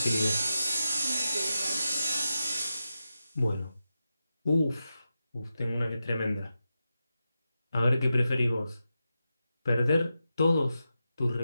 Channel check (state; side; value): inverted; both; correlation -0.90